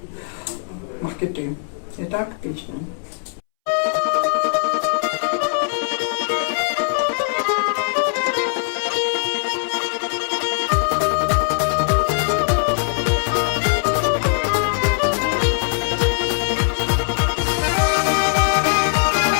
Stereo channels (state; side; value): silent; right; 65 dB below the other